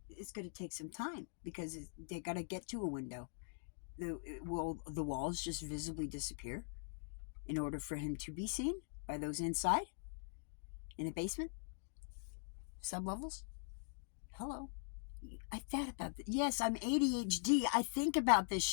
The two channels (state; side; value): silent; right; digital silence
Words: It's going to take some time because they got to get to a window. Will the walls just visibly disappear in order for him to be seen by those inside in the basement, sublevels? Hello? I thought about this. Yes, I'm ADHD. I think about this